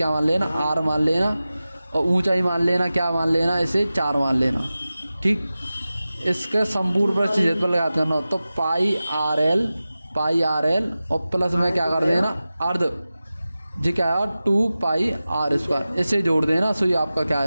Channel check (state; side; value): inverted; both; correlation -0.95